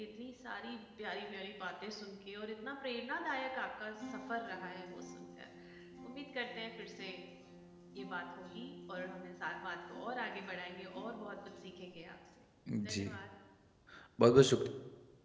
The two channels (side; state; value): both; identical; correlation 1.00